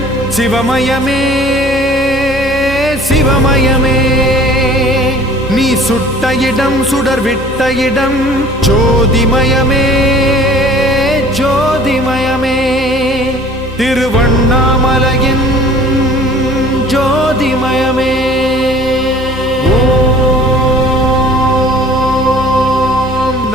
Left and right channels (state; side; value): normal; both; correlation 0.50